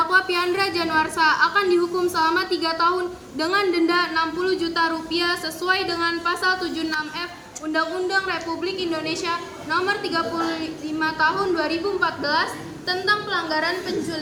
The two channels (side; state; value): both; identical; correlation 1.00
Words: Piandra Januarsa akan dihukum selama 3 tahun dengan denda 60 juta rupiah sesuai dengan pasal 76F Undang-Undang Republik Indonesia Nomor 35 Tahun 2014 tentang pelanggaran